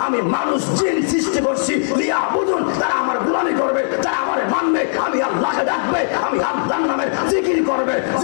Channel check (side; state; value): right; silent; digital silence